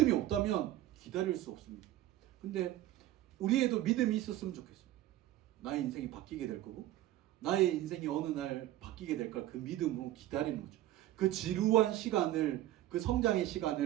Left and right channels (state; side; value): quieter; left; 14.2 dB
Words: 없다면 기다릴 수 없습니다. 근데 우리에도 믿음이 있었으면 좋겠어요. 나의 인생이 바뀌게 될 거고 나의 인생이 어느 날 바뀌게 될 걸 그 믿음으로 기다리는 거죠. 그 지루한 시간을, 그 성장의